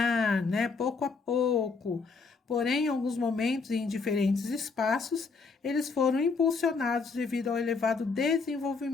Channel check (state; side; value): quieter; right; 4.6 dB